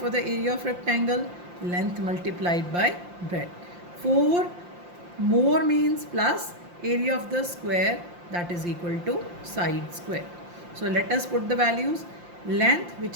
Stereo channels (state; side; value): late; left; 5.7 ms